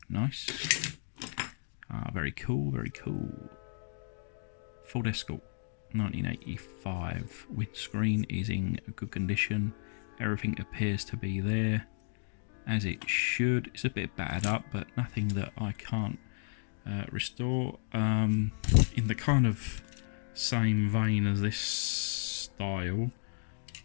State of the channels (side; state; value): right; silent; digital silence